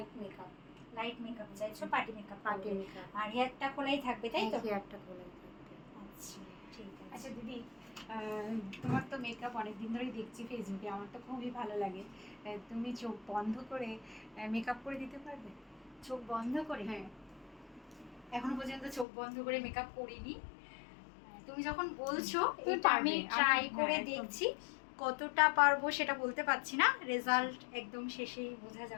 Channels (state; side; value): drops out; right; at 19.1 s